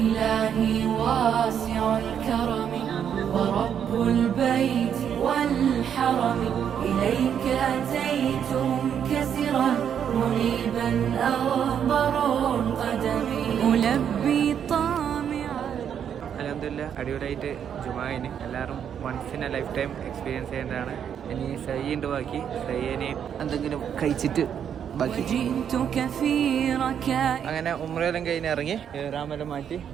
إلهي واسع الكرم ورب البيت والحرم إليك أتيت منكسرا منيبا أغبر القدم ألبي طامعا. അൽഹംദുലില്ലാ അടിപൊളിയായിട്ട് ജുമായിന് എല്ലാവരും once in a lifetime experience ചെയ്യേണ്ടതാണ്. ഇനി സയ്യുണ്ട്, ബാക്കി സയ്യനെ എന്തെങ്കിലും കഴിച്ചിട്ട് ബാക്കി അങ്ങനെ ഉംറയെല്ലാം കഴിഞ്ഞ് ഇറങ്ങി ഇഹ്റാമെല്ലാം മാറ്റി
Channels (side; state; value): left; quieter; 8.5 dB